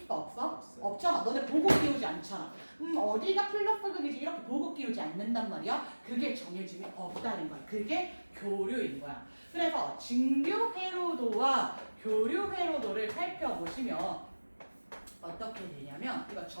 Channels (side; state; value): both; inverted; correlation -1.00